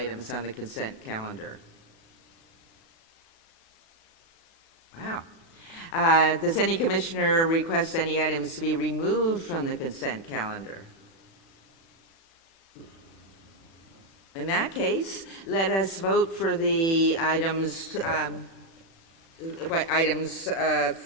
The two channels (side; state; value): right; late; 36 ms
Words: on the consent calendar? Wow. Does any commissioner request any items to be removed from the consent calendar? In that case, let us vote for the items, items 4